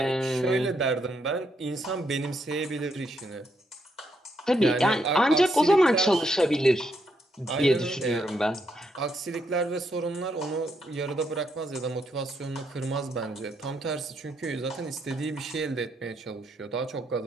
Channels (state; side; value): normal; both; correlation 0.77